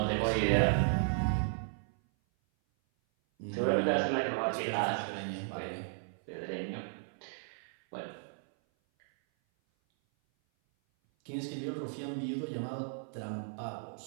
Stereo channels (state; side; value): silent; left; 55 dB below the other